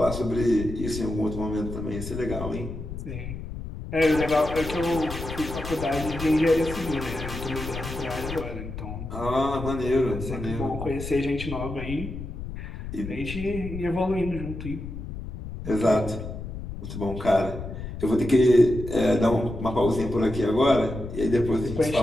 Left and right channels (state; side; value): noise; left; rumble, 8 dB below the sound